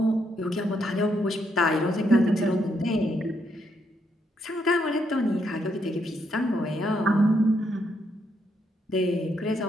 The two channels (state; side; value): normal; both; correlation 0.76